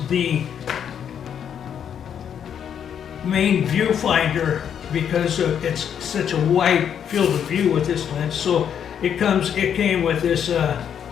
the main viewfinder because it's such a wide field of view with this lens. So it came with this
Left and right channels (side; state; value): right; quieter; 8.5 dB